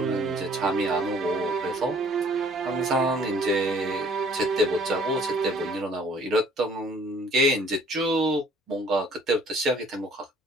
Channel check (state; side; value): normal; both; correlation 0.57